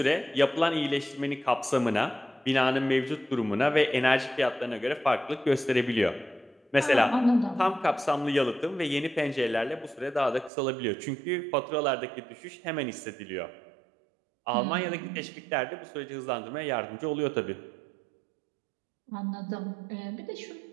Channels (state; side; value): drops out; left; at 10.5 s